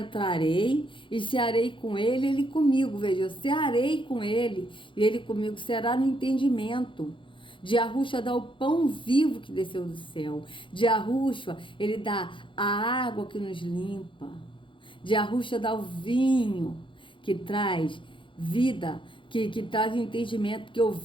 e cearei com ele, ele comigo. Veja, eu cearei com ele e ele comigo, será no entendimento. De Yahushua dá o pão vivo que desceu do céu. De Yahushua, ele dá a água que nos limpa. De Yahushua dá o vinho que traz vida, que traz entendimento, porque o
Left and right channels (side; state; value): right; late; 0.24 ms